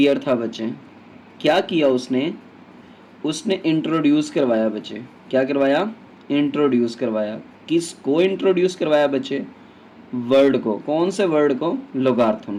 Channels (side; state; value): both; identical; correlation 1.00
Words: था बच्चे। क्या किया उसने? उसने इंट्रोड्यूस करवाया बच्चे। क्या करवाया? इंट्रोड्यूस करवाया। किसको इंट्रोड्यूस करवाया बच्चे? वर्ड को। कौन से वर्ड को?